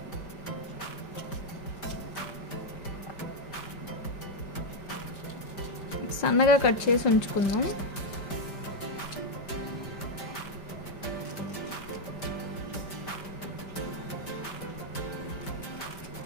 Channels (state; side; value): late; right; 5.1 ms